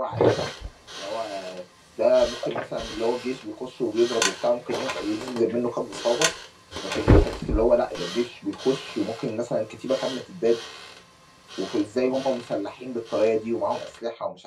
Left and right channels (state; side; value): identical; both; correlation 1.00